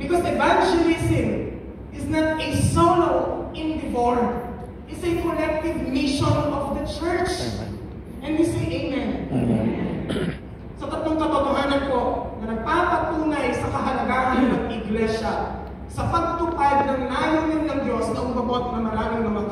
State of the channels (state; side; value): identical; both; correlation 1.00